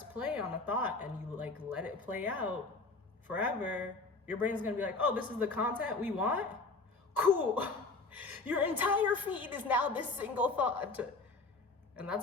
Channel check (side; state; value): right; quieter; 3.7 dB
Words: play on a thought and you like let it play out forever, your brain's gonna be like, oh, this is the content we want? Cool. Your entire feed is now this single thought. And